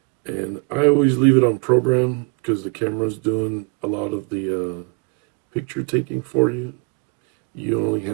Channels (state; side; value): quieter; left; 31.6 dB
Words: And I always leave it on program because the camera's doing a lot of the picture taking for you. You only